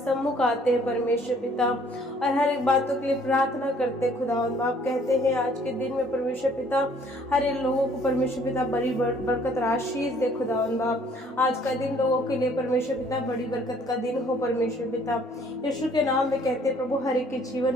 आते हैं परमेश्वर पिता, और हर एक बातों के लिए प्रार्थना करते खुदावंद बाप। कहते हैं आज के दिन में परमेश्वर पिता हर एक लोगों को परमेश्वर पिता बड़ी बरकत आशीष दे खुदावंद बाप। आज का दिन लोगों के लिए परमेश्वर पिता बड़ी बरकत का दिन हो परमेश्वर पिता। यीशु के नाम में कहते हैं प्रभु हर एक के जीवन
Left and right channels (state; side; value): normal; both; correlation 0.60